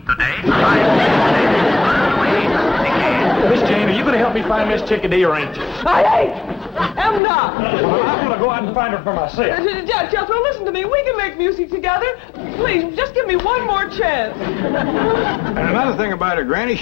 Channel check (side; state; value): right; drops out; at 7.2 s